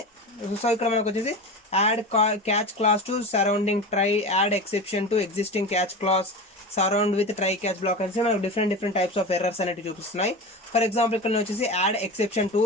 సో ఇక్కడ మనకు వచ్చేసి add catch class to surrounding try, add exception to existing catch class, surround with try catch black అనేసి మనకు డిఫరెంట్ టైప్స్ ఆఫ్ ఎర్రర్స్ అనేవి చూపిస్తున్నాయి. ఫర్ ఎగ్జాంపుల్ ఇక్కడ నేను వచ్చేసి యాడ్ ఎక్సెప్షన్ టు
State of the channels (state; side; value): normal; both; correlation 0.28